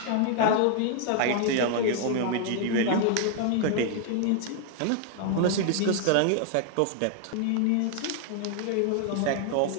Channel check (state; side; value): different; both; correlation 0.00